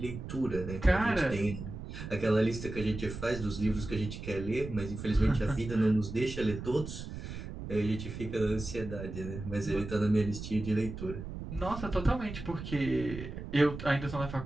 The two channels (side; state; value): right; noise; rumble, 9 dB below the sound